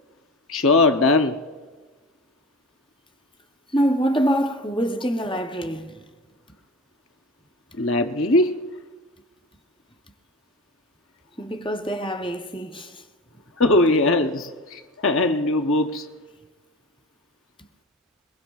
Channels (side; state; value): both; normal; correlation 0.31